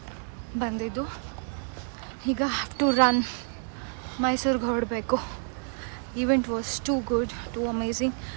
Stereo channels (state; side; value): silent; left; 58 dB below the other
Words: ಬಂದಿದ್ದು. ಈಗ have to run ಮೈಸೂರಿಗೆ ಹೊರಡಬೇಕು. Event was too good, too amazing.